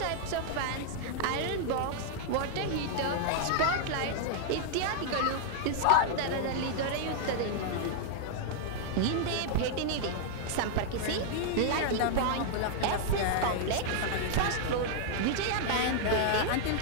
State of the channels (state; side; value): different; both; correlation -0.01